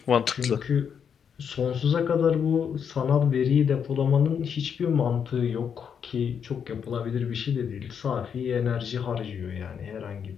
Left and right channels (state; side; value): quieter; right; 7.4 dB